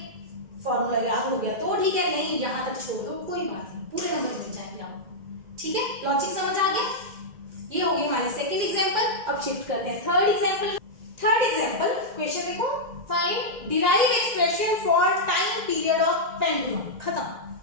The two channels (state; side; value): late; left; 2.1 ms